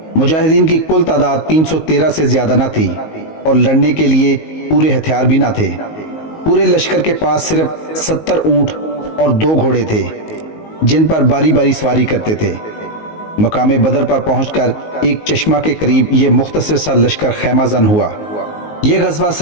مجاہدین کی کل تعداد 313 سے زیادہ نہ تھی اور لڑنے کے لیے پورے ہتھیار بھی نہ تھے۔ پورے لشکر کے پاس صرف 70 اونٹ اور 2 گھوڑے تھے جن پر باری باری سواری کرتے تھے۔ مقام بدر پر پہنچ کر ایک چشمہ کے قریب یہ مختصر سا لشکر خیمہ زن ہوا۔ یہ غزوہ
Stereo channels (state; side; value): late; right; 19 ms